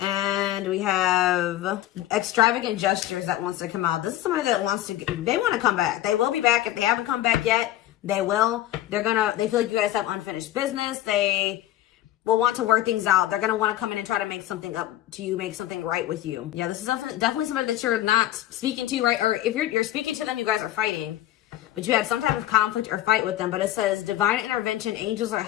we have extravagant gestures that wants to come out. This is somebody that they want to come back. They will be back. If they haven't come back yet, they will. They feel like you guys have unfinished business. They will want to work things out. They're going to want to come in and try to make something up to you, make something right with you. Yeah, this is definitely somebody that you're not speaking to, right? Or if you're speaking to them, you guys are fighting. But you had some type of conflict or fight with them. But it says divine intervention, angels are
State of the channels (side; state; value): right; quieter; 14.0 dB